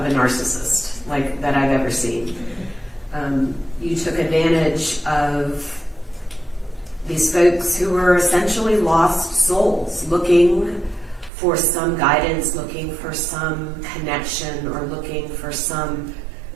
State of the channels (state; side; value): drops out; left; at 11.3 s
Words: a narcissist, like that I've ever seen. You took advantage of these folks who were essentially lost souls, looking for some guidance, looking for some connection, or looking for some